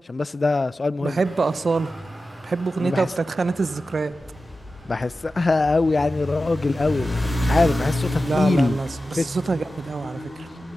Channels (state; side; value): normal; both; correlation 0.93